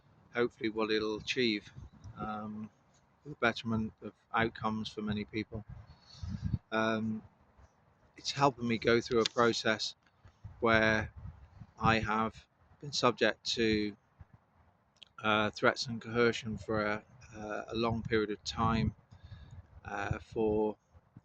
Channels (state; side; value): identical; both; correlation 1.00